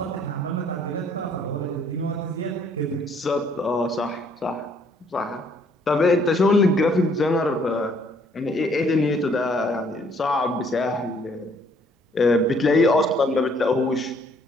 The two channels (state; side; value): normal; both; correlation 0.64